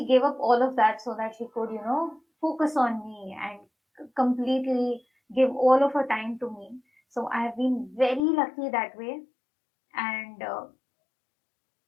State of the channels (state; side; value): drops out; right; at 8.2 s